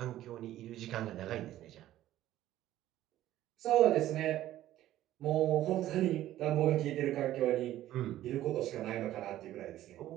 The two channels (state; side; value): quieter; left; 13.7 dB